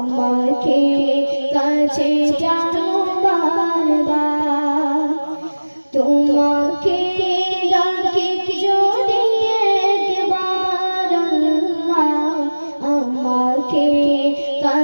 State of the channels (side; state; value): both; inverted; correlation -1.00